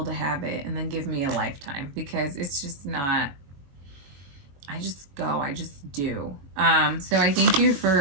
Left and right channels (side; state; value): left; late; 21 ms